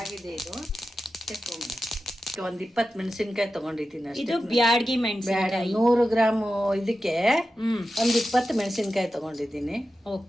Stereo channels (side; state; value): both; normal; correlation 0.92